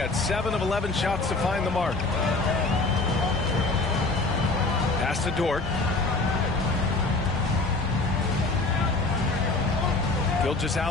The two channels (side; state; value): right; quieter; 3.4 dB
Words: 7 of 11 shots to find the mark. Pass to Dort.